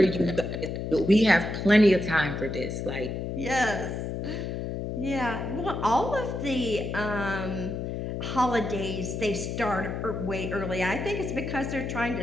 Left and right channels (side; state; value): left; noise; hum, 4 dB below the sound